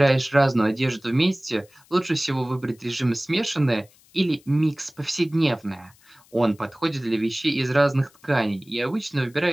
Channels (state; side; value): noise; left; hiss, 29 dB below the sound